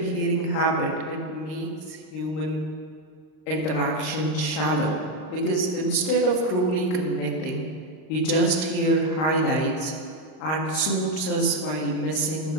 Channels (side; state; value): right; late; 38 ms